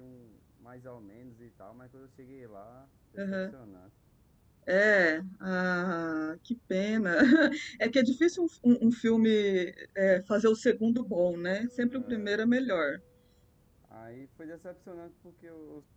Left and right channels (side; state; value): both; identical; correlation 1.00